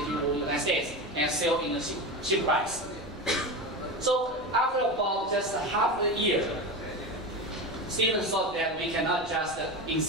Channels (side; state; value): both; normal; correlation 0.22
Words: the United States and sell in a cheap price. So after about just half a year, Steven thought that we cannot just